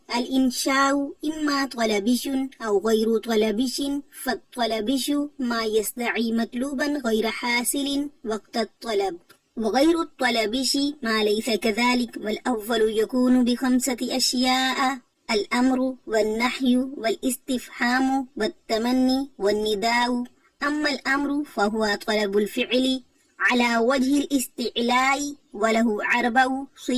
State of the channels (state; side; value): identical; both; correlation 1.00